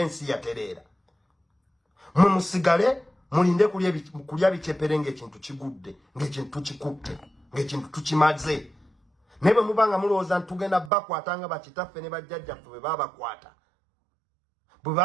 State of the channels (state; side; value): drops out; left; at 10.9 s